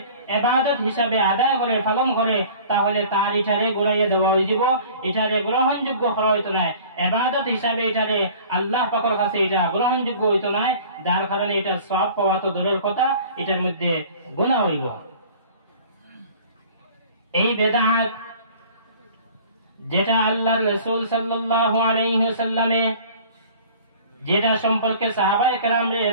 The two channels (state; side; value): inverted; both; correlation -0.47